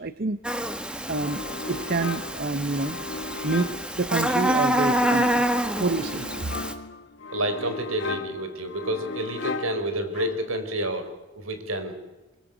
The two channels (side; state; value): both; normal; correlation 0.38